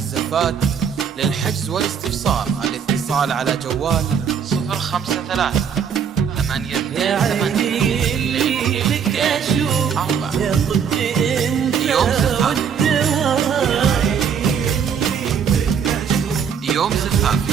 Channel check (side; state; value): left; quieter; 7.3 dB